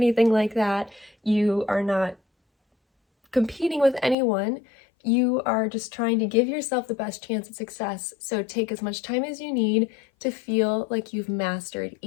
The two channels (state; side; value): drops out; right; at 4.2 s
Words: like that. You are not competing with anyone. You are just trying to give yourself the best chance at success. So take as much time as you need to feel like you've mastered